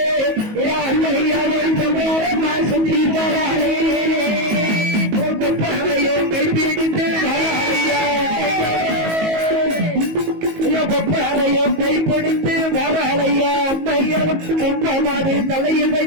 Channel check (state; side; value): late; left; 19 ms